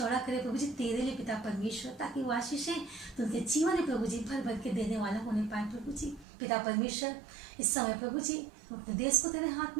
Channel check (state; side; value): drops out; left; at 6.2 s